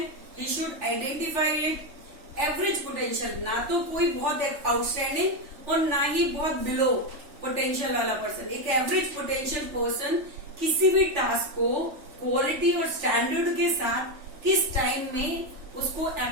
he should identify it. Average potential, ना तो कोई बहुत आउटस्टैंडिंग और ना ही बहुत बिलो पोटेंशियल वाला पर्सन. एक एवरेज पोटेंशियल पर्सन किसी भी टास्क को क्वालिटी और स्टैंडर्ड के साथ किस टाइम में उसको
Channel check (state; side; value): late; left; 3.4 ms